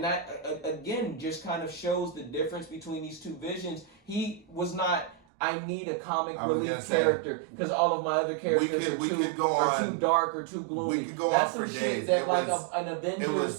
that again just kind of shows the difference between these two visions. He was not. I need a comic relief character because all of my other characters are too dark or too gloomy. We could go on for days. Shit that an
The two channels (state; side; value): drops out; left; at 5.2 s